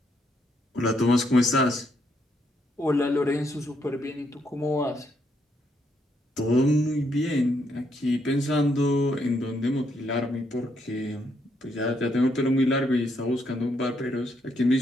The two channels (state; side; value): normal; both; correlation 0.75